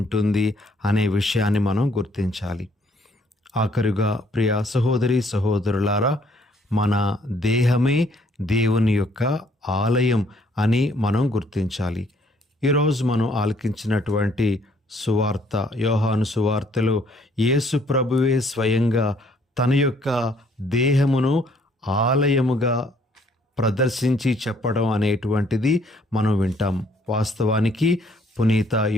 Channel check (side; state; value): both; normal; correlation 0.64